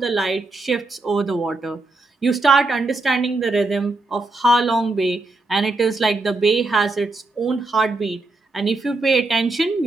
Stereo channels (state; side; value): quieter; left; 3.1 dB